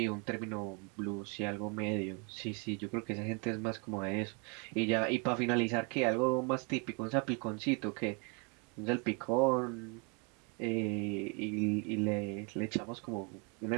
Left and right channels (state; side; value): quieter; left; 34.3 dB